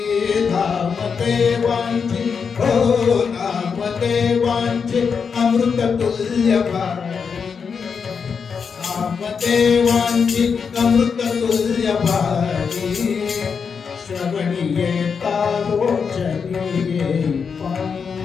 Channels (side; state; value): right; quieter; 6.0 dB